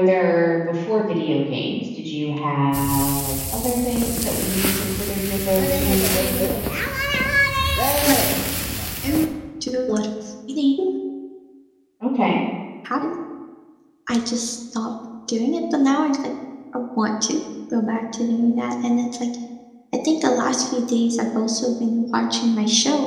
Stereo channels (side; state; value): both; identical; correlation 1.00